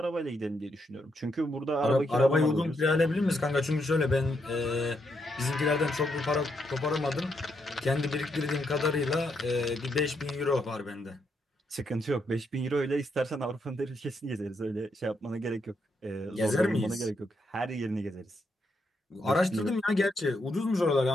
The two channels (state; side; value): normal; both; correlation 0.78